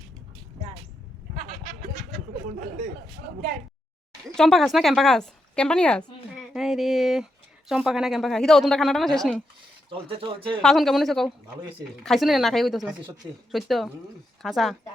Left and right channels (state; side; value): normal; both; correlation 0.83